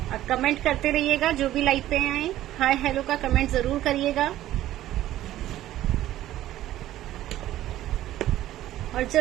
कमेंट करते रहिएगा। जो भी लाइव पे आए हाय हेलो का कमेंट जरूर करिएगा और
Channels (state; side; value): quieter; left; 13.8 dB